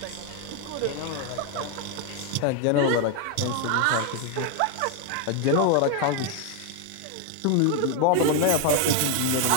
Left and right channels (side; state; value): both; different; correlation 0.01